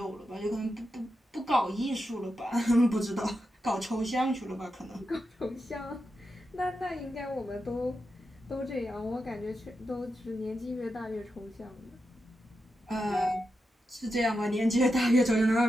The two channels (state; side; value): normal; both; correlation 0.88